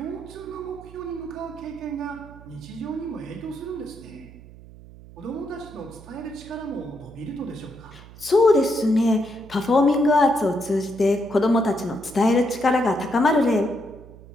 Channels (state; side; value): noise; right; hum, 19 dB below the sound